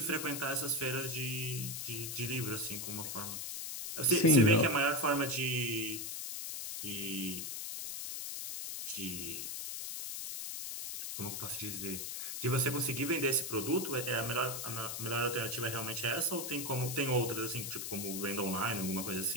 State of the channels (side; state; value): left; noise; hiss, 5 dB below the sound